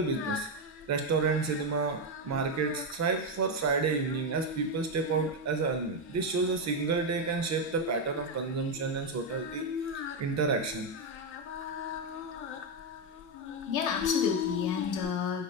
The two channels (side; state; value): both; normal; correlation 0.06